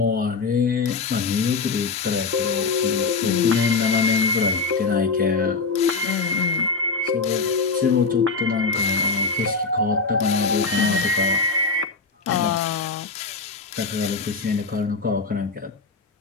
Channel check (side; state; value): right; quieter; 4.3 dB